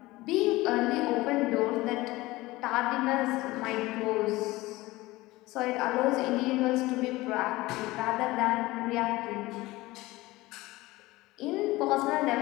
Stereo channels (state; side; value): quieter; right; 19.5 dB